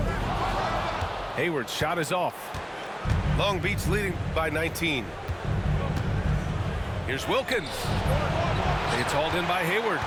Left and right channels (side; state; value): both; identical; correlation 1.00